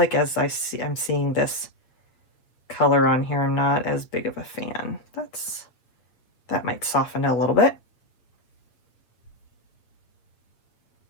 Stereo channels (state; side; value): late; right; 7.8 ms